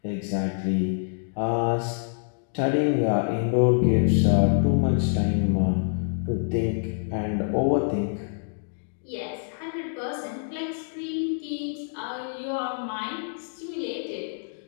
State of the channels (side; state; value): right; silent; digital silence